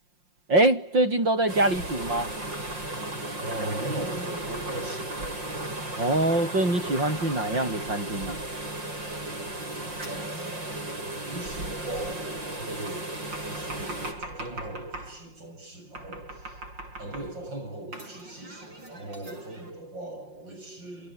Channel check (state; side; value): late; left; 5.6 ms